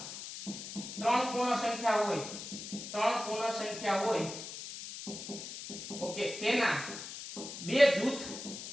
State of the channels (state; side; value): noise; left; hiss, 9 dB below the sound